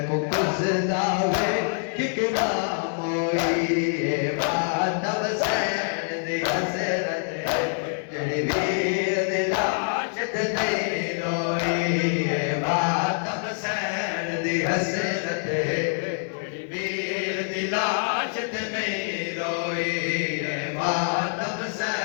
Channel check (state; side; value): silent; right; 61 dB below the other